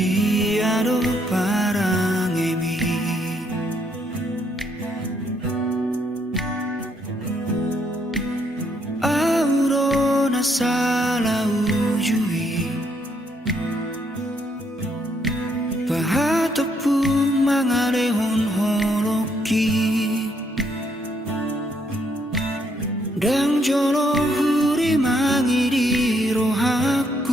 parang emi Aurona salah ujui mangalehon holoki dang jolo huri mangiri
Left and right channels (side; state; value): both; normal; correlation 0.73